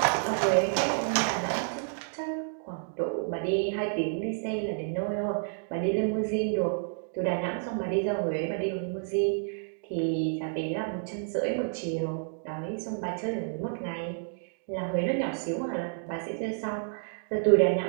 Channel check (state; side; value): silent; left; digital silence